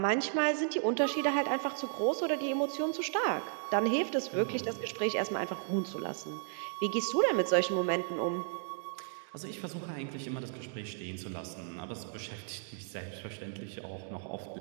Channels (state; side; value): silent; left; digital silence